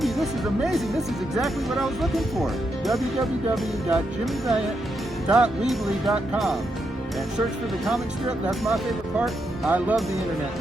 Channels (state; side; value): normal; both; correlation 0.82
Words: this is amazing. This is exactly what I was looking for. www.jimmyvaliant.weebly.com. And search for the comic strip. That's my favorite part. I love the internet